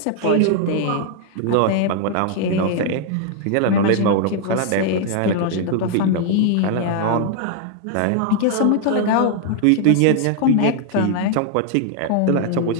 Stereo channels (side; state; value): both; different; correlation 0.00